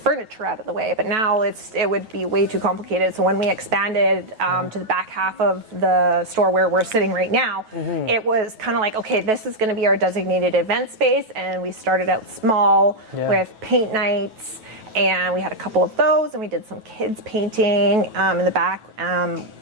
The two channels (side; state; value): left; late; 9.2 ms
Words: out of the way. But now it would be way too complicated. So when we expanded to the back half of the store where we're sitting right now, it was kind of like, okay, this is going to be our designated event space. And we started out small with paint nights. And we had a couple of those, and we did some kids painting in the back,